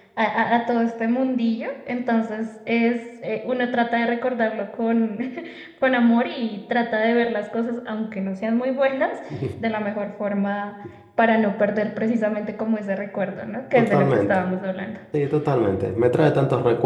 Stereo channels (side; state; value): both; identical; correlation 1.00